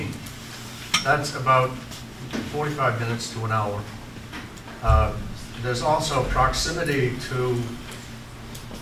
That's about 45 minutes to an hour. There's also proximity to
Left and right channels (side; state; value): both; identical; correlation 1.00